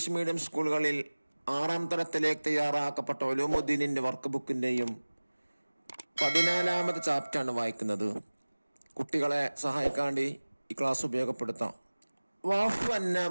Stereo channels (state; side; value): inverted; both; correlation -1.00